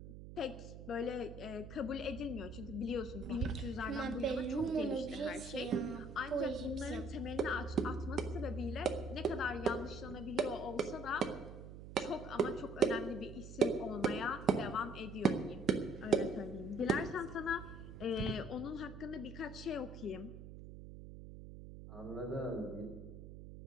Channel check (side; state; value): right; noise; hum, 12 dB below the sound